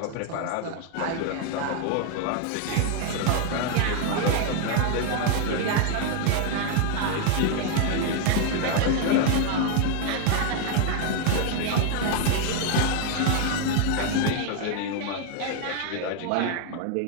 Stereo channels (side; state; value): both; different; correlation 0.01